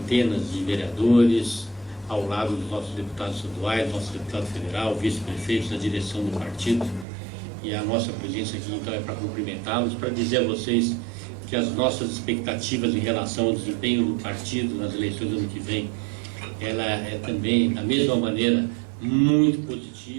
de vereadores, ao lado dos nossos deputados estaduais, nosso deputado federal, vice-prefeitos da direção do partido. E a nossa presença aqui, então, é para cumprimentá-los, para dizer a vocês que as nossas expectativas em relação ao desempenho do partido nas eleições do ano que vem, ela é também, da mesma maneira, muito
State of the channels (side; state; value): left; drops out; at 7.1 s